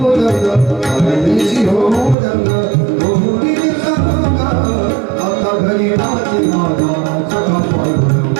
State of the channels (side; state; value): left; drops out; at 2.1 s